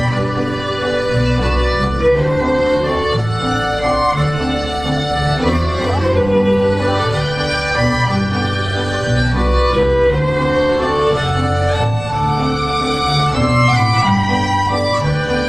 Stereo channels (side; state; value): right; noise; rumble, 14 dB below the sound